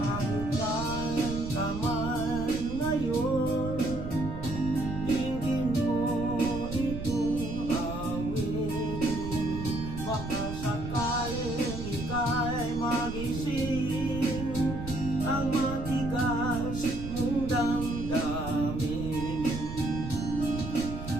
saan ka man ngayon, tingin mo itong awitin. Baka sakaling ika'y magising ang matigas mong damdamin.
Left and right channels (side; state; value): right; noise; rumble, 7 dB below the sound